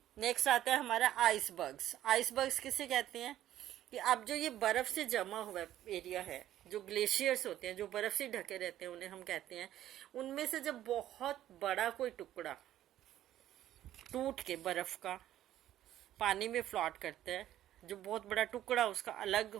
नेक्स्ट आता है हमारा आइसबर्ग्स. आइसबर्ग्स किसे कहते हैं? कि अब जो ये बर्फ से जमा हुआ एरिया है, जो ग्लेशियर्स होते हैं, जो बर्फ से ढके रहते हैं, उन्हें हम कहते हैं, उनमें से जब बहुत बड़ा कोई टुकड़ा टूट के बर्फ का पानी में फ्लॉट करता है, जो बहुत बड़ा टुकड़ा उसका अलग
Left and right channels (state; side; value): quieter; left; 12.7 dB